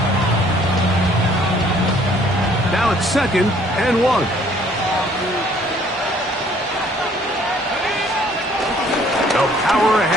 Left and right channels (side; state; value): both; normal; correlation 0.59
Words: Now it's 2nd and 1. They'll power